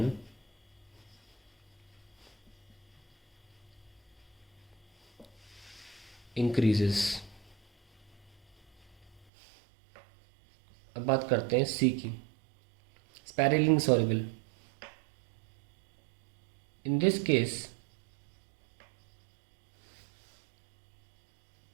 इंक्रीजेस। अब बात करते हैं सी की, sparingly soluble. In this case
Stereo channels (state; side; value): drops out; left; at 9.2 s